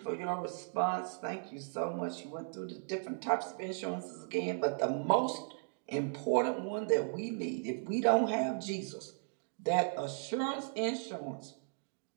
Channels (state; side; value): silent; left; digital silence